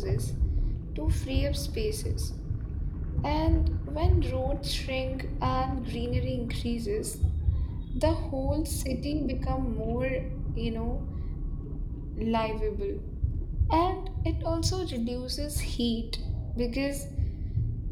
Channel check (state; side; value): identical; both; correlation 1.00